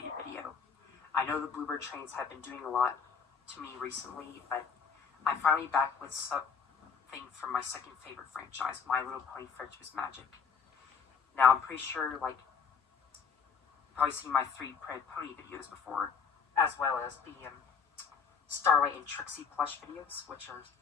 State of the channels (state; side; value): quieter; right; 6.2 dB